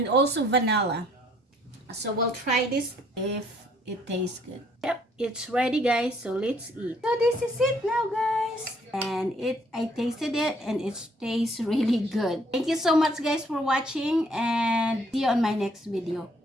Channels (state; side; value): normal; both; correlation 0.64